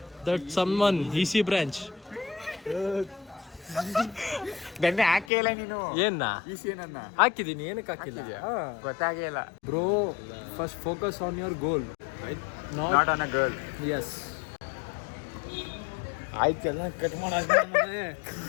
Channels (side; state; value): right; drops out; at 5.2 s